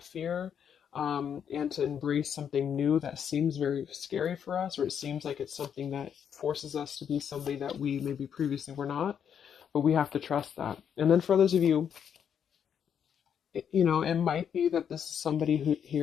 fear, and to embrace something new that seems very scary for us, or it seems like it's something that forces us to be somebody that we maybe previously were not. But we have to trust that. And then for those of you, it might be that this is somebody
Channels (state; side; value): quieter; right; 8.2 dB